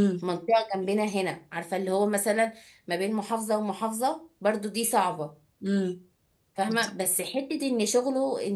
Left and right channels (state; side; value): identical; both; correlation 1.00